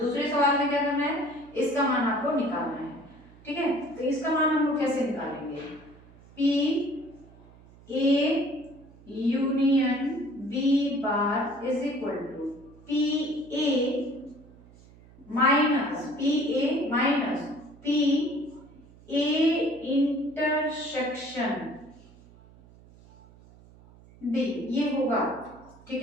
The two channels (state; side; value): noise; right; hum, 24 dB below the sound